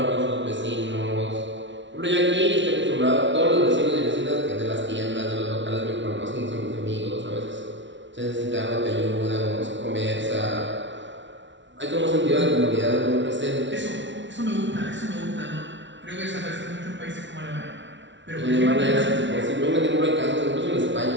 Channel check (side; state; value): left; late; 0.54 ms